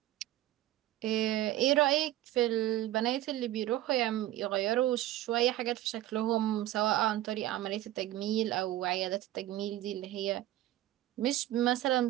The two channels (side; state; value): left; quieter; 14.5 dB